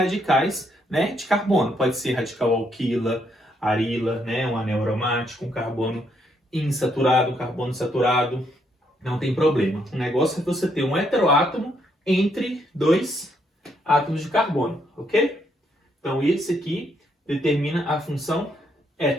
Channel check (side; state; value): both; normal; correlation 0.74